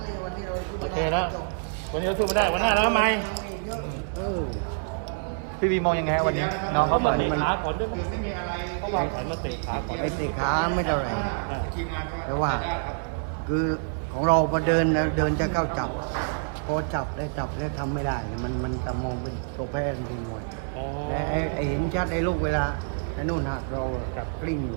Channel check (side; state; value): left; silent; 60 dB below the other